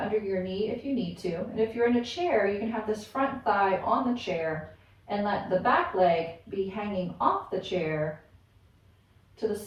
your knee if you need to. And if you're in a chair, you can have this front thigh on the chair and let the back leg be hanging off the chair to the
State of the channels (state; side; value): identical; both; correlation 1.00